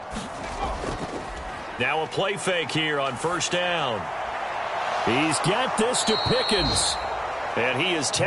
Now a play fake here on 1st down. He's got this to Pickens. And he is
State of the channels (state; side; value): identical; both; correlation 1.00